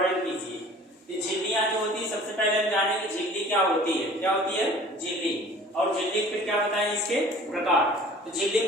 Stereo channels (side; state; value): both; normal; correlation 0.47